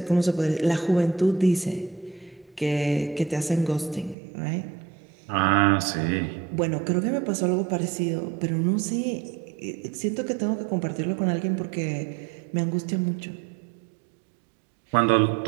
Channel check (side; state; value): left; drops out; at 4.2 s